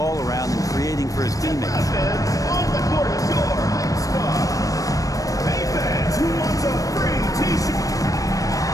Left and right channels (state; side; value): late; right; 0.16 ms